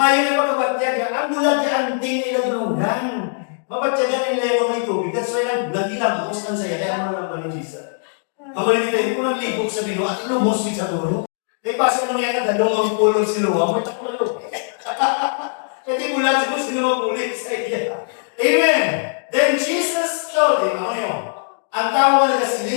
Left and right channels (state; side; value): silent; right; digital silence